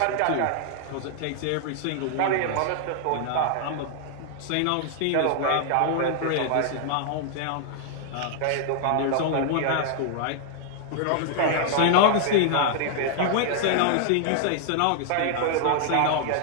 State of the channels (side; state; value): both; different; correlation 0.00